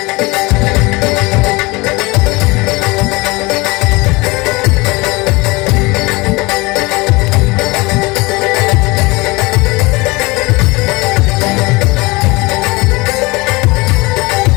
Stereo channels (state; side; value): quieter; right; 24.1 dB